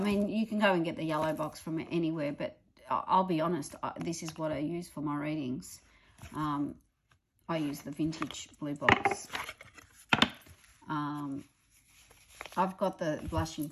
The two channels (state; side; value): identical; both; correlation 1.00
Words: you can go and get the yellow box from anywhere, but I'll be honest, this is what I use for my readings. I use the vintage blue box. I've got the Blushing